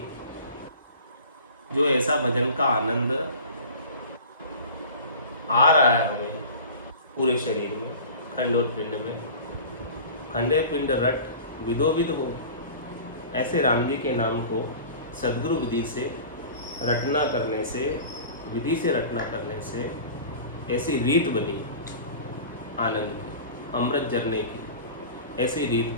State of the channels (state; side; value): inverted; both; correlation -0.39